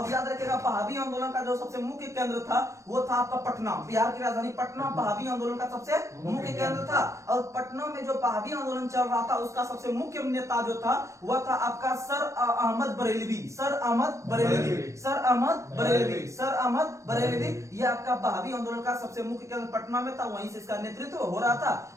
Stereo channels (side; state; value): left; late; 0.15 ms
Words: याद रखिएगा, बहावी आंदोलन का जो सबसे मुख्य केंद्र था वो था आपका पटना, बिहार की राजधानी पटना बहावी आंदोलन का सबसे मुख्य केंद्र था। और पटना में जो बहावी आंदोलन चल रहा था उसका सबसे मुख्य नेता जो था वह था आपका सर अहमद बरेलवी। ये आपका बहावी आंदोलन का सबसे मुख्य केंद्र पटना में था, वहीं से इसका नेतृत्व हो रहा था।